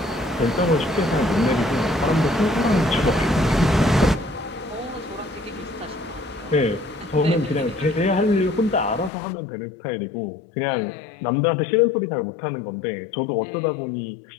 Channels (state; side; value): drops out; right; at 9.1 s